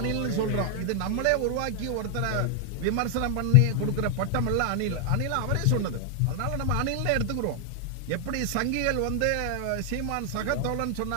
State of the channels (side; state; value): both; different; correlation 0.00